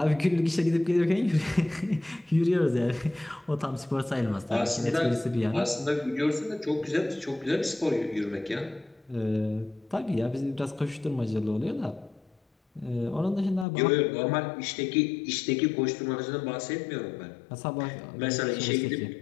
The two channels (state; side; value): drops out; right; at 13.7 s